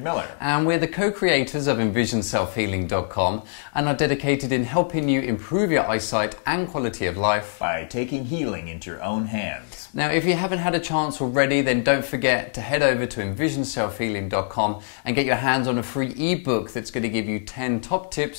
Miller. And we're the co-creators of EnvisionSelfHealing.com and are dedicated in helping you improve your eyesight and quality of life by taking healing into your own hands. Now, if you haven't had a chance already, then don't forget to head over to EnvisionSelfHealing.com and get your hands on a free ebook that's going to give you 10 top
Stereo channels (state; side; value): silent; right; digital silence